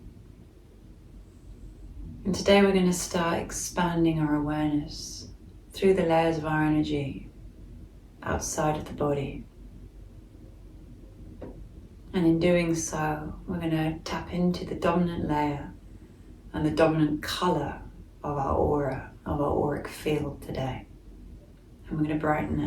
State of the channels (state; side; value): identical; both; correlation 1.00